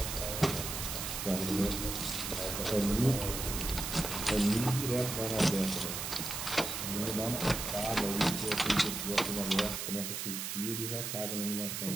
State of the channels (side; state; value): right; noise; hiss, 4 dB below the sound